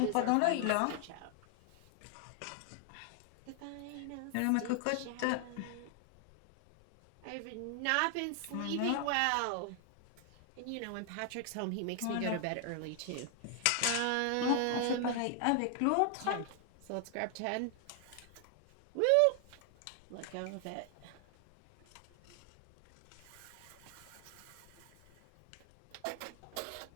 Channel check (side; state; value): both; different; correlation 0.00